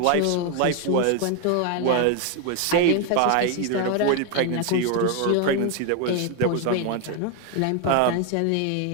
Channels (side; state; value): both; different; correlation 0.01